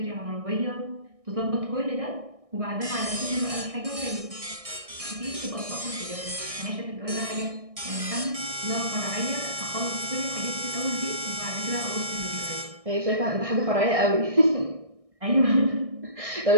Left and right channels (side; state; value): left; late; 1.6 ms